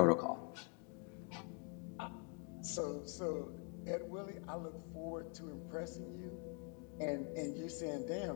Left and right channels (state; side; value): quieter; right; 37.6 dB